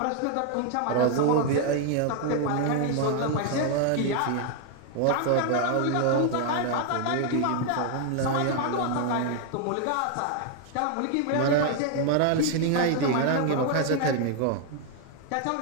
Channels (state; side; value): different; both; correlation 0.00